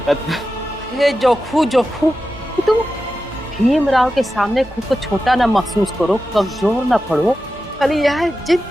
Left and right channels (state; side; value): normal; both; correlation 0.92